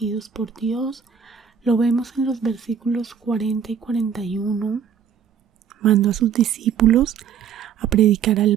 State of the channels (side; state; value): left; quieter; 7.5 dB